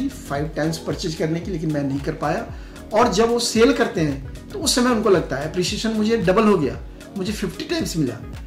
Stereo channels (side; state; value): both; identical; correlation 1.00